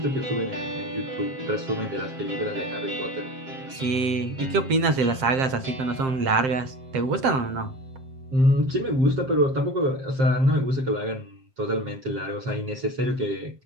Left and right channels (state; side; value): late; left; 7.6 ms